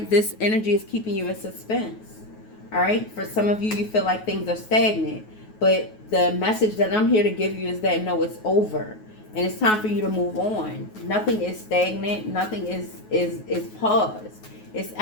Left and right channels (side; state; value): right; late; 9.4 ms